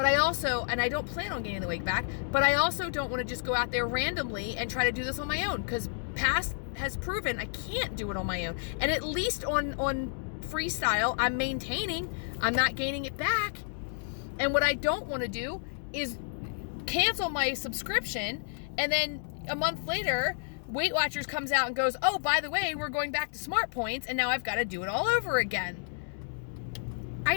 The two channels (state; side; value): silent; right; digital silence